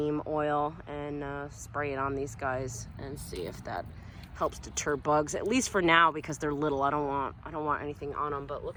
oil and spray it on these guys and see if that helps deter bugs, at least for now, because they're little. I don't want anything on them. But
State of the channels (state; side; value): identical; both; correlation 1.00